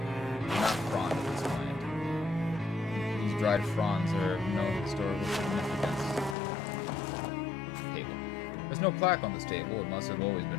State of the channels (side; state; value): right; drops out; at 6.4 s